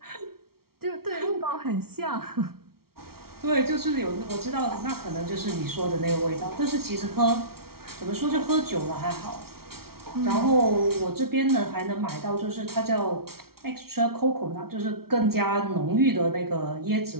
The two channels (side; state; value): left; late; 0.94 ms